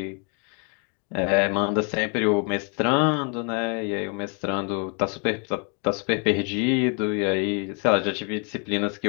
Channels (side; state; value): right; quieter; 37.2 dB